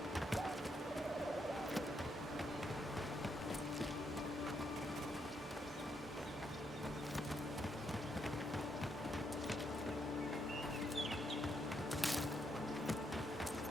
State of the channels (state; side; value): normal; both; correlation 0.77